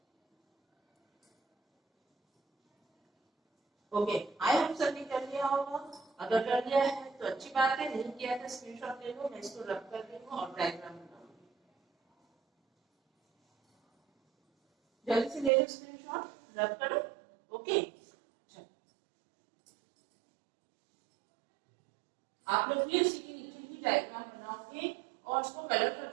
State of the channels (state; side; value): drops out; left; at 15.5 s